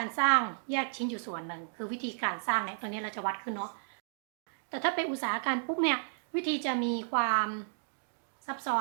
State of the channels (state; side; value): silent; left; digital silence